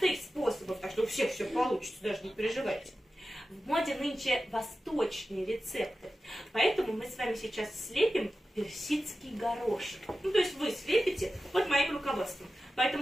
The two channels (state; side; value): normal; both; correlation 0.93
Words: способов, так что у всех все получится, даже не переживайте. В моде нынче восточные рецепты, поэтому мы с вами сейчас слепим персидский горошек. То есть вы слепите под моим руководством.